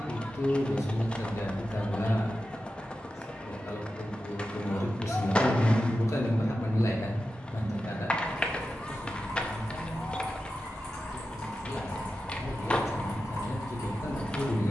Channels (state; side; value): normal; both; correlation 0.92